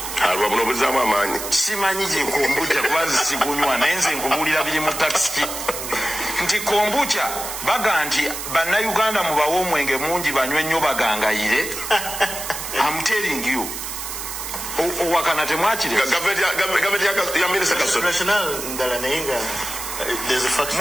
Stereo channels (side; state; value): right; noise; hiss, 7 dB below the sound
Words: alwa buno buzaamu amaanyi simanyi gye kombucha kubanze sigunywa naye nze nkubuulira biri mu taxi nti kombucha baga nti bannayuganda mubawe omwenge mungi banywe nnyo bagangayire. I'm telling you owakana temwakire gavumenti ya minisita Kasolo